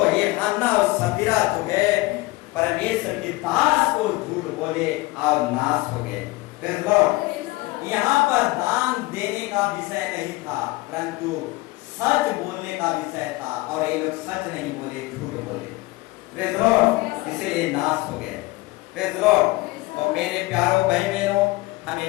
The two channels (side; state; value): right; quieter; 21.4 dB